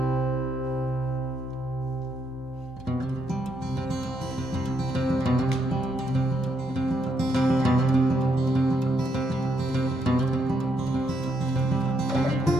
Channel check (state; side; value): normal; both; correlation 0.77